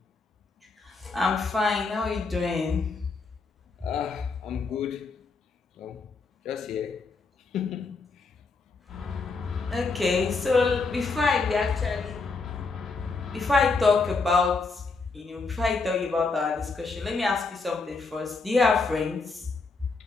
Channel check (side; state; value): right; quieter; 4.1 dB